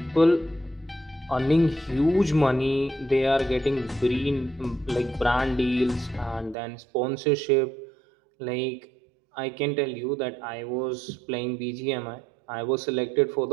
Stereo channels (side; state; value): left; drops out; at 6.6 s